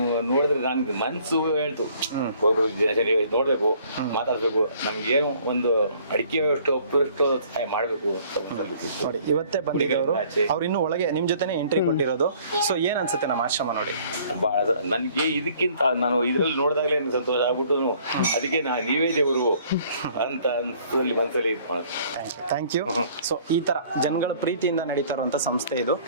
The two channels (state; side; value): inverted; both; correlation -0.57